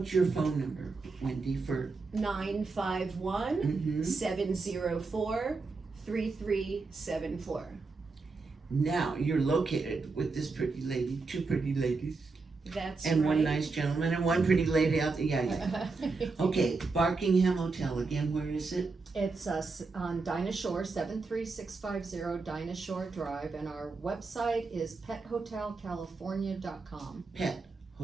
your phone number, Wendy, for 951 704 3374. Now you're located with this pretty lady, 2 pretty ladies, That's and right. one nice gentleman, and one pretty lady out there. Yeah. Okay, Barkingham Hotel again. Where is it? It's on Dinah Shore, 73650 Dinah Shore Drive, and our website is pethotelcalifornia.com. Pet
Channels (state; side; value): quieter; left; 4.1 dB